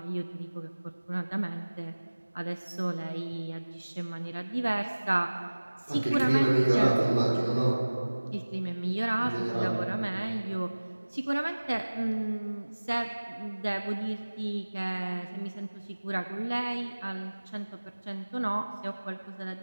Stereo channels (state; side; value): inverted; both; correlation -1.00